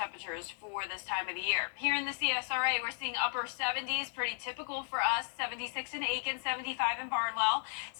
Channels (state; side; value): silent; right; 55 dB below the other